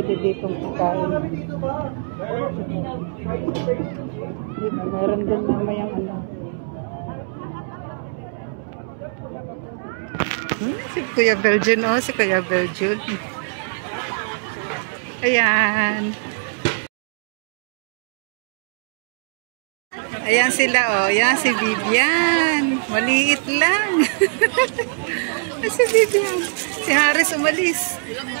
ditong pagkain. Dito, meron doon mamayang ano. Si Kuya Belgian, oh. Si Kuya Belgian. Ayan. Ayan sila, oh. Ayan si Vivian. Maliit lang. Si Vivian. Si Haris umalis.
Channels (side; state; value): left; silent; digital silence